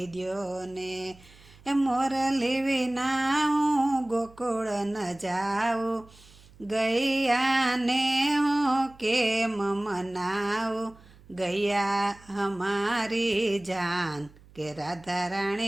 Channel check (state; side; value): noise; right; hum, 25 dB below the sound